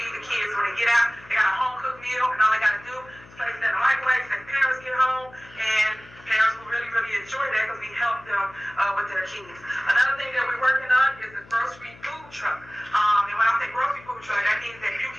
the kids when they get out. They got a home cooked meal, and all they gotta do is place it in the microwave. Let parents get home, and parents will really, really enjoy that because we help them with their kids. Another thing that we're working on is the grocery food truck. And when I say grocery food truck, that means that you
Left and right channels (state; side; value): noise; left; hum, 23 dB below the sound